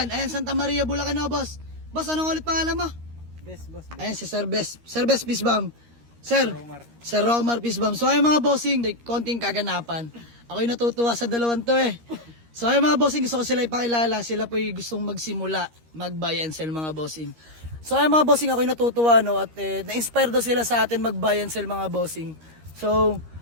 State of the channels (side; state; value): left; late; 13 ms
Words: Ayan, Santa Maria, Bulacan na boss. Boss, anong ulit pangalan mo? Best boss. Ayan si Sir Bes. Sir Bes, peace bomb. Sir, Romar. Sir Romar, peace bomb. So ayun mga bossing, konting kaganapan. Ako'y natutuwa sa dalawang to eh. So ayun mga bossing, gusto ko sila ipakilala. Sila po'y gustong magsimula, mag-buy and sell mga bossing. So ayun mga bossing, ako'y natutuwa no, at na-inspire daw sila sa atin mag-buy and sell mga bossing. So